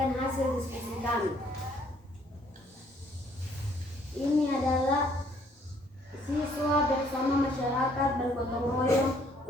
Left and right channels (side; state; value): both; normal; correlation 0.64